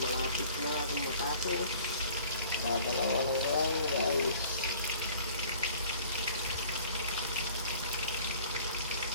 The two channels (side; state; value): both; inverted; correlation -0.50